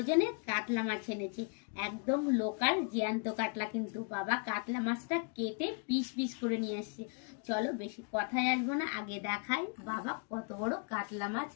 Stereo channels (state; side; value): quieter; right; 38.2 dB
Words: কাতলা মাছ এনেছে। একদম লোকাল জ্যান্ত কাতলা, কিন্তু বাবা কাতলা মাছটা কেটে পিস পিস করে নিয়ে আসছে। চলো বেশি কথায় আসবো না, আগে দেখাই বাবা কত বড় কাতলা মাছ